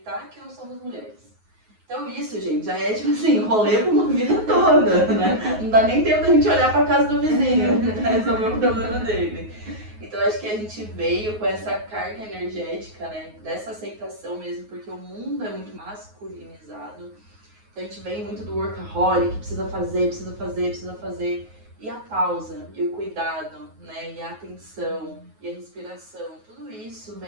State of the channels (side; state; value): left; late; 9.4 ms